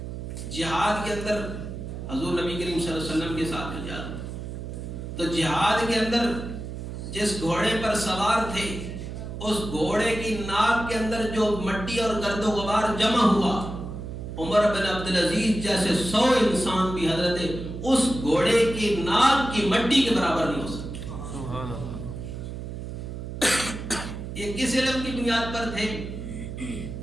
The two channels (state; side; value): noise; right; hum, 8 dB below the sound